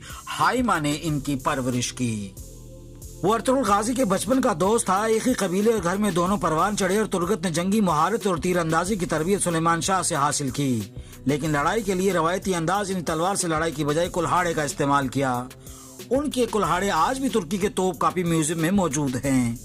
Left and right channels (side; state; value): both; identical; correlation 1.00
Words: حائمہ نے ان کی پرورش کی۔ وہ ارطغرل غازی کے بچپن کا دوست تھا۔ ایک ہی قبیلے اور گھر میں دونوں پروان چڑھے اور ترگت نے جنگی مہارت اور تیر اندازی کی تربیت سلیمان شاہ سے حاصل کی، لیکن لڑائی کے لیے روایتی انداز یعنی تلوار سے لڑائی کی بجائے کلہاڑے کا استعمال کیا۔ ان کے کلہاڑے آج بھی ترکی کے توپ کاپی میوزیم میں موجود ہیں۔